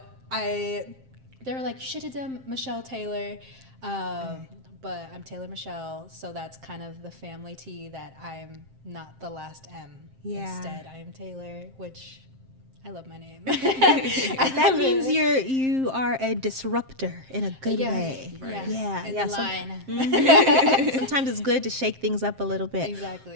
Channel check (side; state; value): left; late; 7.6 ms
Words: they were like, you should have done Michelle Taylor, but I'm Taylor Michelle, so that's kind of the family T, that I'm not the last M. Yeah. Instead, I am Taylor, which I love my name. That means you are a disruptor in a good way. Yeah. Yeah. In yeah, the line. Sometimes it's good to shake things up a little bit. Exactly.